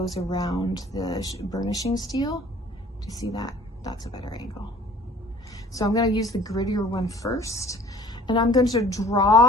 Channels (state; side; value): normal; both; correlation 0.51